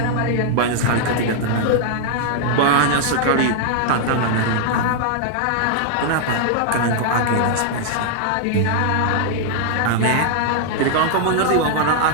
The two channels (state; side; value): different; both; correlation 0.00